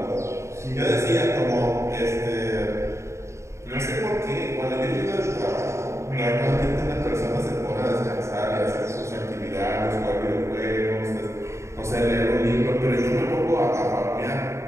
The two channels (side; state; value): left; late; 0.14 ms